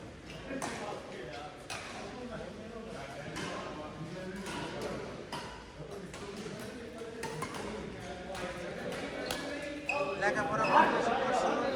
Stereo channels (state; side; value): identical; both; correlation 1.00